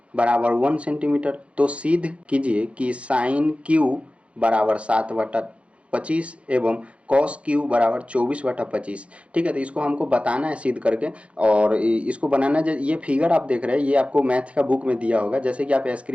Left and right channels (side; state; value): left; late; 0.061 ms